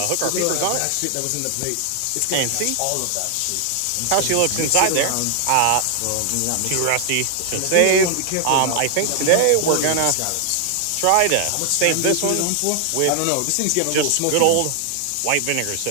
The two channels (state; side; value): different; both; correlation 0.00